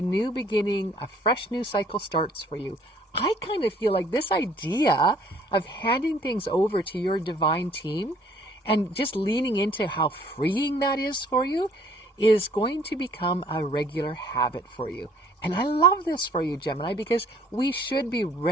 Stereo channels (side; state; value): both; normal; correlation 0.58